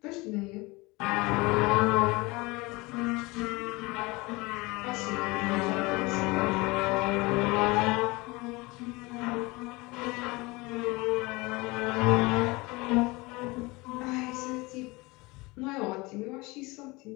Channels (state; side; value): quieter; right; 23.8 dB